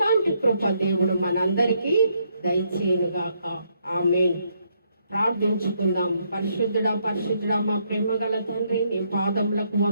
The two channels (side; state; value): both; inverted; correlation -0.74